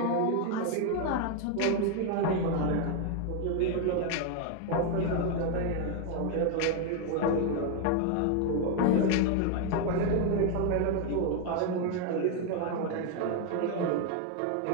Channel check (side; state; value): both; different; correlation 0.01